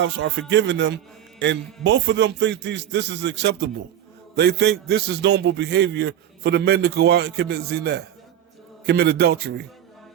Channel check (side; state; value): left; quieter; 10.4 dB